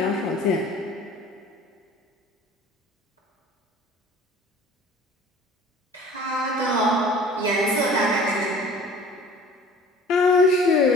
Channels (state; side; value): normal; both; correlation 0.46